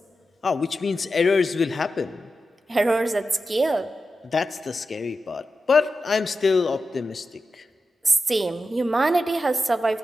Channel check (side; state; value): both; normal; correlation 0.91